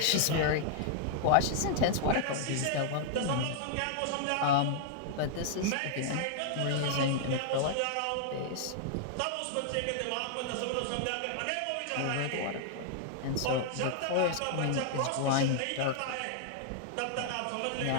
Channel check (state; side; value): different; both; correlation -0.01